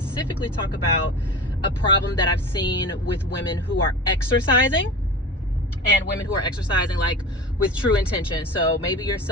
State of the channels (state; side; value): normal; both; correlation 0.32